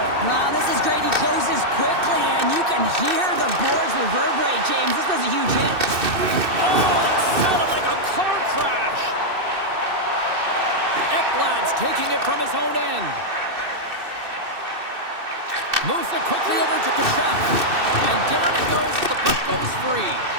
was a huge hit. Oh, that sounded like a car crash. Ekblad's taking it from his own end. Moves it quickly over to Tkachuk. And down it goes as the puck goes free.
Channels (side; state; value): left; late; 2.6 ms